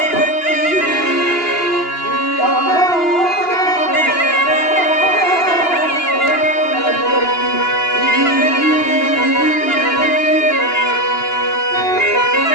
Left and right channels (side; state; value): right; late; 2.9 ms